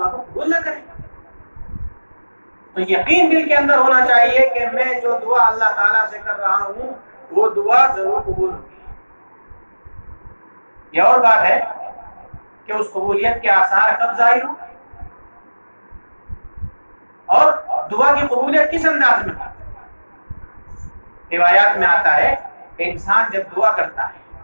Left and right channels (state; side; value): inverted; both; correlation -1.00